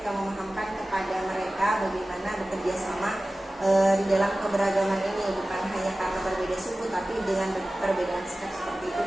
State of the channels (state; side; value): normal; both; correlation 0.96